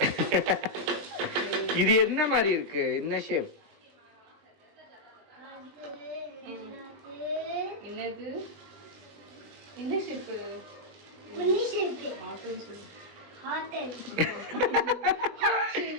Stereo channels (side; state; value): left; late; 19 ms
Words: இது என்ன மாதிரி இருக்கு? என்ன ஷேப்? என்னது? என்ன ஷேப்? புள்ளி ஷேப். ஹார்ட்னு சொல்லு. ஹார்ட். Heart